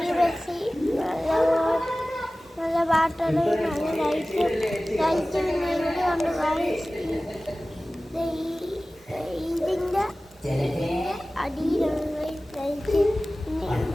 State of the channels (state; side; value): normal; both; correlation 0.97